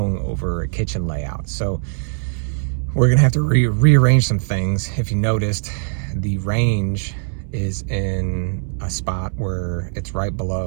over a kitchen layout. So we're gonna have to rearrange some things. If you noticed, the range is in a spot where it's right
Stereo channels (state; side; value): silent; left; 66 dB below the other